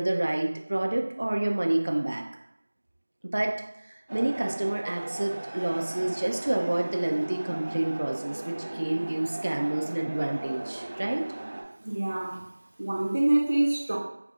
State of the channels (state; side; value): inverted; both; correlation -1.00